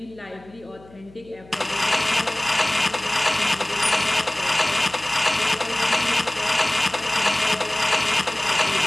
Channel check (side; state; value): left; noise; hum, 24 dB below the sound